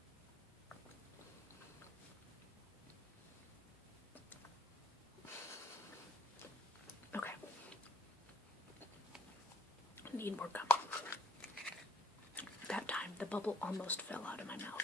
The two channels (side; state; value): both; normal; correlation 0.63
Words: Okay. Need more gum. That time, the bubble almost fell out of my